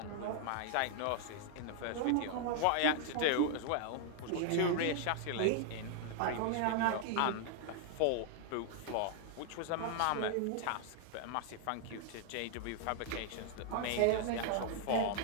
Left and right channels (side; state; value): both; different; correlation 0.00